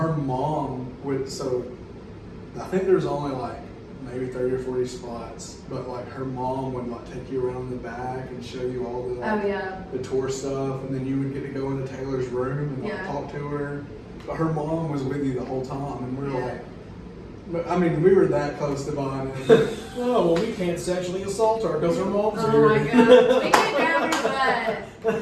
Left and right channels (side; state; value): both; identical; correlation 1.00